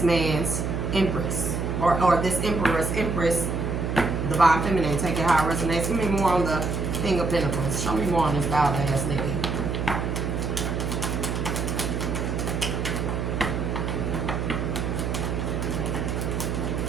man's empress. Or this empress, divine feminine. Take it how it resonates. Give me more on the King of Pentacles. Show me more on this wild ass nigga.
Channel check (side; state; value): right; noise; hum, 1 dB below the sound